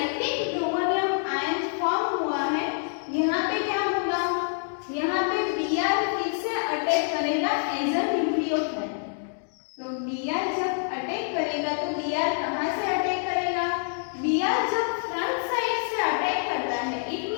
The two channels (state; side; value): silent; right; digital silence